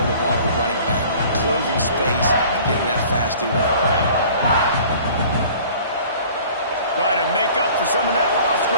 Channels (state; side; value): inverted; both; correlation -0.48